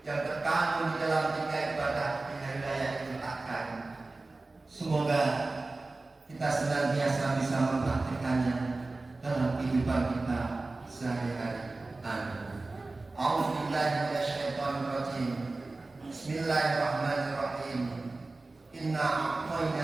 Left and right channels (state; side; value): quieter; left; 3.3 dB